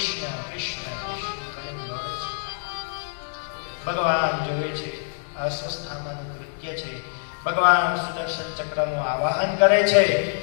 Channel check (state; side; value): silent; right; digital silence